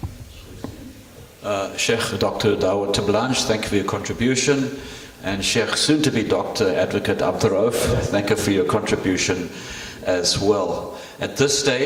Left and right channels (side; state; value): both; identical; correlation 1.00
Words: Sheikh Dr. Dawood Terblanche, thank you for your contribution. And Sheikh, soon to be Dr. Advocate Abduroaf, thank you for your contribution as well. At this